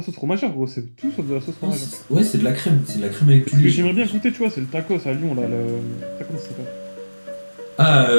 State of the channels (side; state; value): both; inverted; correlation -1.00